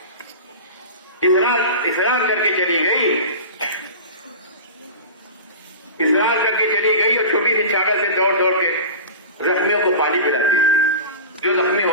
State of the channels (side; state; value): both; inverted; correlation -0.30